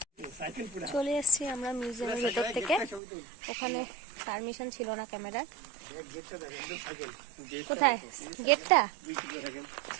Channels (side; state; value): left; drops out; at 3.0 s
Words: চলে এসেছি আমরা মিউজিয়ামের ভেতর থেকে। ওখানে পারমিশন ছিল না ক্যামেরার। কোথায় গেটটা?